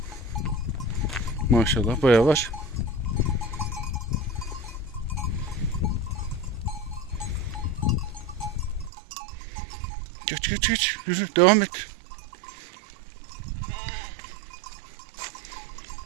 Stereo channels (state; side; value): drops out; left; at 8.9 s